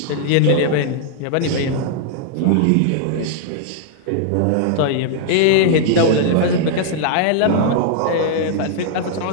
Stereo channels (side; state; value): both; different; correlation -0.01